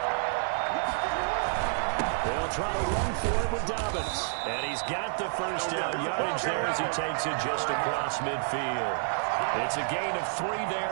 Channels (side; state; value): left; silent; digital silence